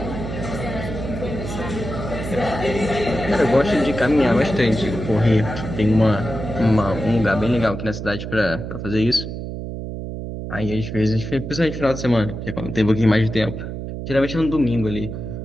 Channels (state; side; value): noise; right; hum, 7 dB below the sound